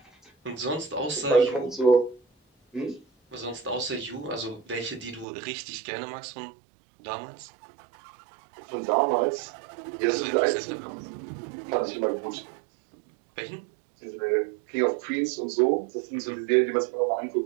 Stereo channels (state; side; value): drops out; left; at 5.2 s